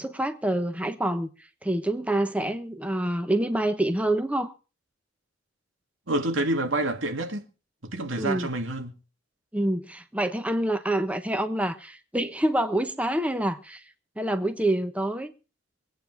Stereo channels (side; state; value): both; normal; correlation 0.74